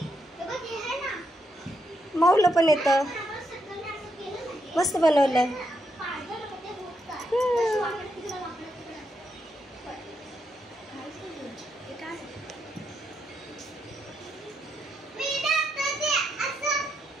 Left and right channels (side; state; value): both; normal; correlation 0.80